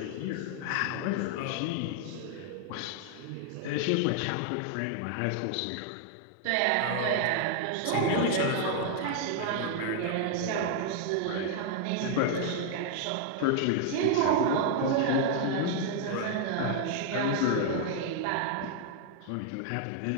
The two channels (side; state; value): both; different; correlation 0.00